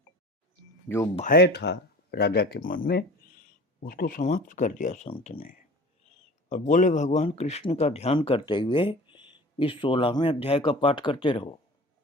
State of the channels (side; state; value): both; normal; correlation 0.41